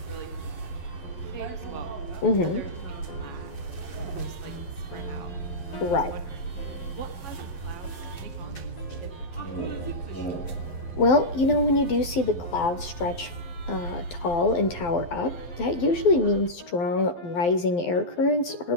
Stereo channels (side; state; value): right; late; 12 ms